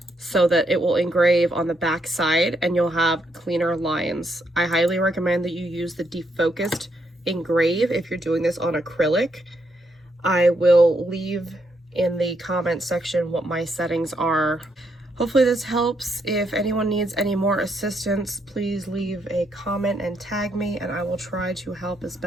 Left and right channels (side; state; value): both; normal; correlation 0.77